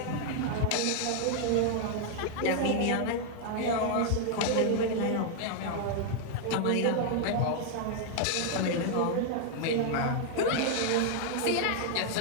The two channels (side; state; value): both; different; correlation 0.00